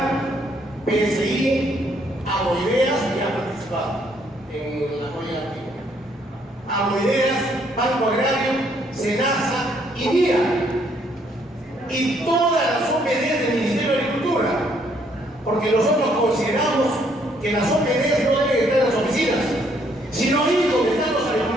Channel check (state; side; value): normal; both; correlation 0.68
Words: PSI, Agroideas, que ha participado en la joya antigua, Agroideas, Banco Agrario, SENASA y NIA, y todas las OPDs del Ministerio de Agricultura, porque nosotros consideramos que las OPDs no deben estar en las oficinas, sino ir donde están los